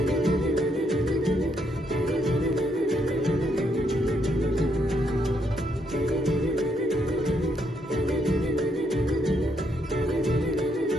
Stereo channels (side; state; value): both; normal; correlation 0.74